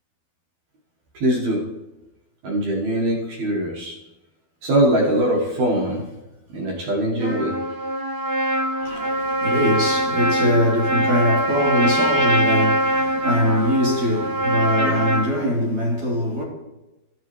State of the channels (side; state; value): left; late; 12 ms